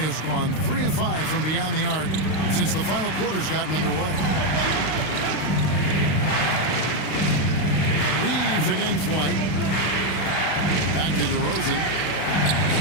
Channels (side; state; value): right; late; 32 ms